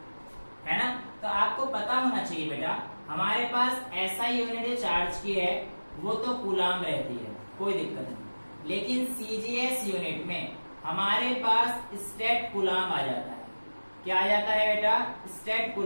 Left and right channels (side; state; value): both; inverted; correlation -1.00